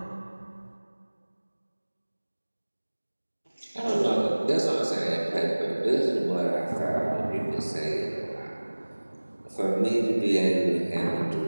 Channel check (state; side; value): inverted; both; correlation -1.00